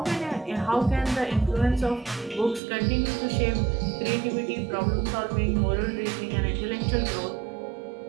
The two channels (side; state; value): left; drops out; at 2.6 s